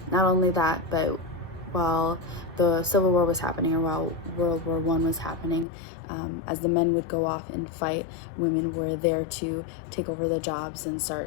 not only that, but while the Civil War was happening, or while World War I was happening, as the men would go off and fight, women were there to take over the jobs and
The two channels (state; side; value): drops out; right; at 5.7 s